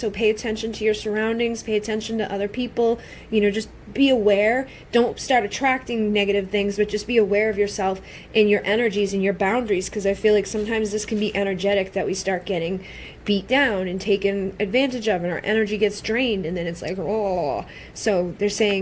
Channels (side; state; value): both; identical; correlation 1.00